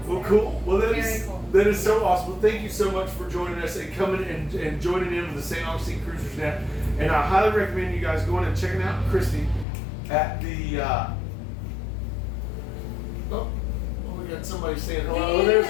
Well, They're cool. Well, Very cool. that is so awesome. Well, thank you so much for joining us and coming and joining in with the St. Augustine Cruisers Net. And I highly recommend you guys going and checking out Christy at the. We got somebody saying hello. There's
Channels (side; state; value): right; drops out; at 9.7 s